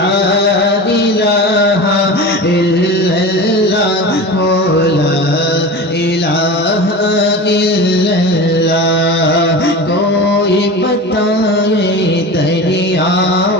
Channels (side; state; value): both; normal; correlation 0.30